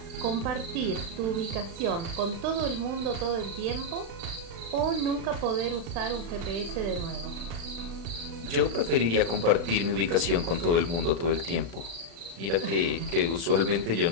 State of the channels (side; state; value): left; late; 36 ms